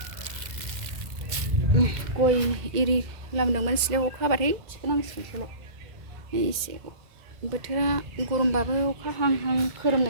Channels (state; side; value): late; left; 2.0 ms